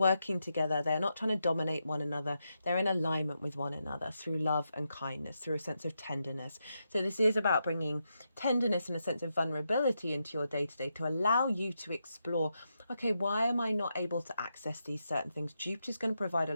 together. They're not trying to dominate one another. They're in alignment with one another through love and kindness, through a sense of tenderness. So this is about bringing tenderness and a sense of vulnerability into your day-to-day to allow you to explore, okay, why am I not able to access these certain things? Jupiter's going to provide a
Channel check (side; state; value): both; inverted; correlation -0.85